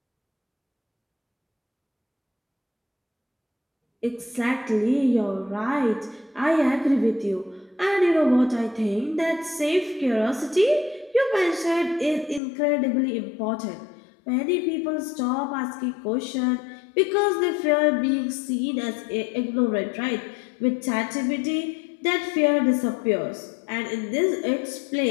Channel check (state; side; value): drops out; right; at 12.4 s